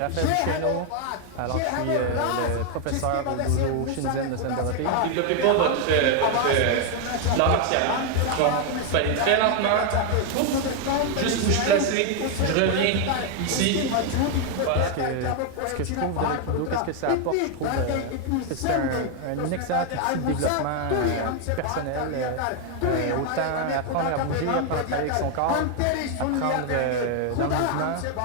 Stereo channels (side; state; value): both; different; correlation 0.01